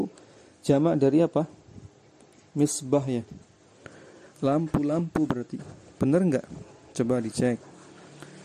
jamak dari apa? Misbah ya. Lampu-lampu berarti. Benar enggak? Coba dicek.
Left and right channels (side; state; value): both; identical; correlation 1.00